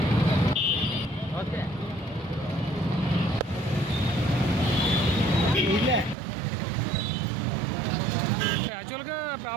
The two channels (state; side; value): drops out; left; at 6.2 s